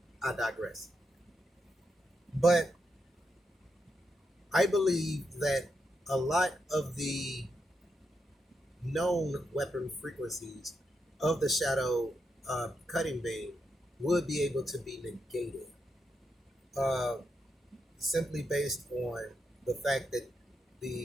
I digress. But I believe that a lot of the known weapon frequencies of the shadow cutting beam would be able to be negated, simply based on the fact that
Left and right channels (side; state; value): both; normal; correlation 0.84